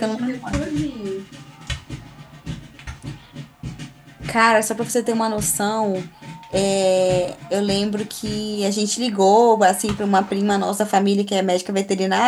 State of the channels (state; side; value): identical; both; correlation 1.00